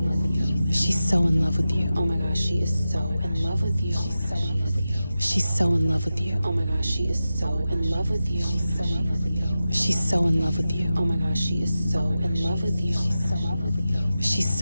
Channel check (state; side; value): inverted; both; correlation -0.93